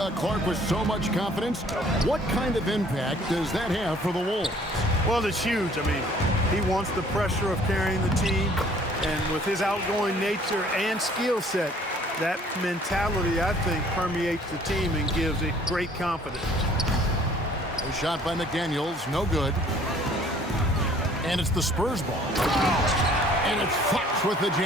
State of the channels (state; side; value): normal; both; correlation 0.56